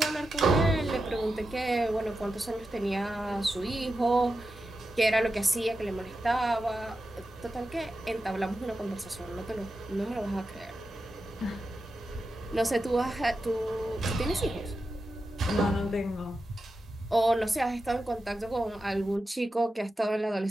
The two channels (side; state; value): both; normal; correlation 0.90